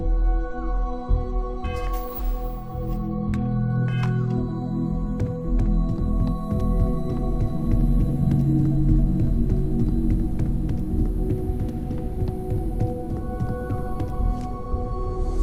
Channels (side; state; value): both; identical; correlation 1.00